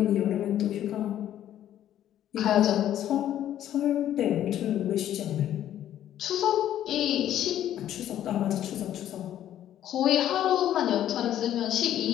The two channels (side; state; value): right; quieter; 11.5 dB